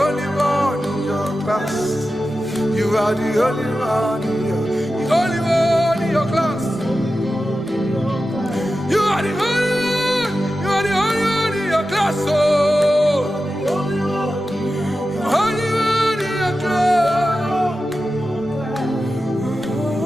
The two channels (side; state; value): both; normal; correlation 0.92